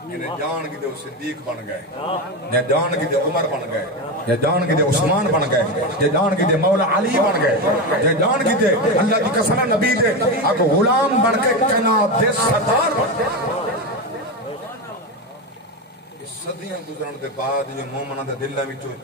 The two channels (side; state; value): both; normal; correlation 0.16